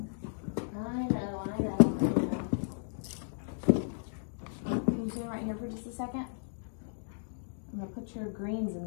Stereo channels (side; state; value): right; silent; digital silence